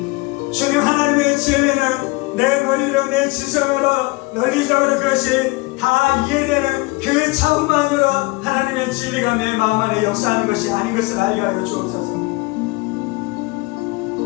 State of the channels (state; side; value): quieter; right; 24.1 dB